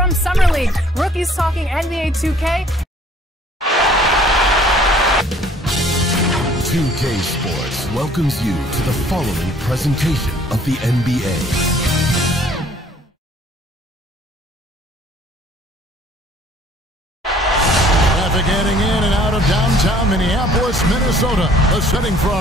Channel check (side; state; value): both; normal; correlation 0.56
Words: Summer League, rookies talking NBA 2K. 2K Sports welcomes you to the following presentation of the NBA. Getting in and out of downtown Minneapolis, Minnesota, the setting for